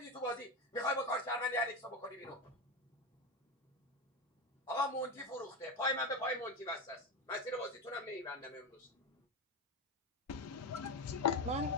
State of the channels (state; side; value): normal; both; correlation 0.17